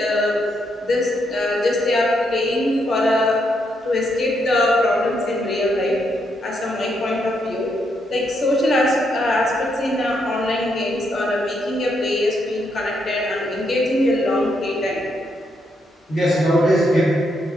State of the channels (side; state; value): both; normal; correlation 0.78